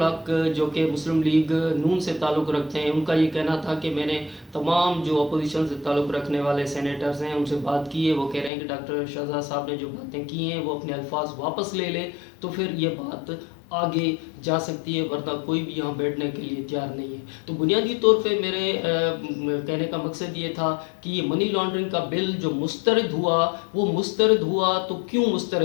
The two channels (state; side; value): drops out; right; at 8.5 s